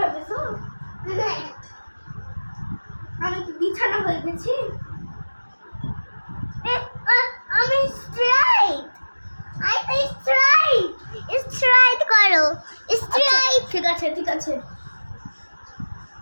আমি কি বিছানা হয়ে গেছি? আমি স্ট্রাইট। I straight. স্ট্রাইট করো। স্ট্রাইট। ঠিক আছে ঠিক আছে।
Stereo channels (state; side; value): inverted; both; correlation -1.00